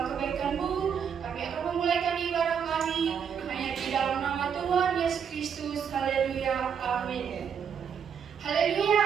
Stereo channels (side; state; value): left; quieter; 7.4 dB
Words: kebaikan-Mu. Kami akan memulaikan ibadah kami hanya di dalam nama Tuhan Yesus Kristus. Haleluya, amin.